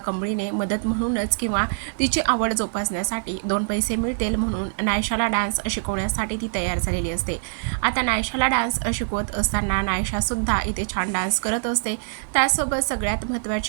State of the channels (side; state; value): left; silent; digital silence